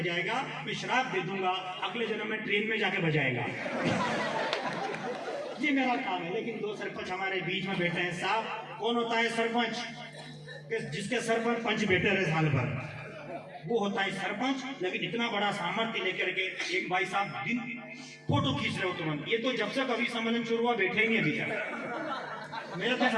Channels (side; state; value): both; identical; correlation 1.00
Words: मैं श्राप दे दूंगा, अगले जन्म में ट्रेन में जाके बजाएगा। ये मेरा काम है। लेकिन 2 सरपंच हमारे बीच में बैठे हैं साहब। कौन होता है सरपंच? जिसके सर पर पंच बैठे रहे साल भर, वो होता है सरपंच। लेकिन इतना बड़ा सामर्थ्य लेकर के एक भाई साहब दिन फोटो खींच रहे हो तुरंत। ये तो जब से कवि सम्मेलन शुरू हुआ बैठे ही अभी तक। मेरे तो